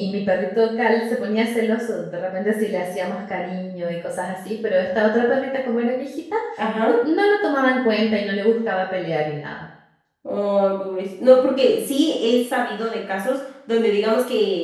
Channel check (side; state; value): both; identical; correlation 1.00